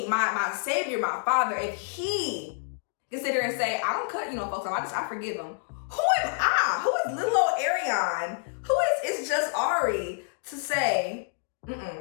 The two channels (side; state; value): right; silent; digital silence